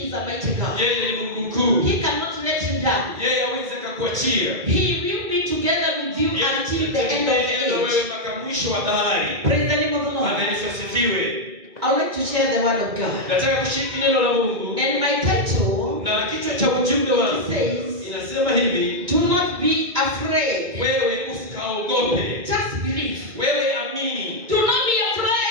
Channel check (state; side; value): late; left; 2.3 ms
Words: is a mighty God. Yeye ni Mungu mkuu. He cannot let you down. Yeye hawezi kukuachia. He will be together with you until the end of the Yeye wewe age. mpaka mwisho wa dahari. Praise the name of the Bwana Lord. Yesu asifiwe. I would like to share the word of God. Nataka kushiriki neno la Mungu. And my title Na kichwa cha ujumbe wangu says, inasema hivi, do not be afraid. wewe usikaogope. Just believe. Wewe amini. Do not be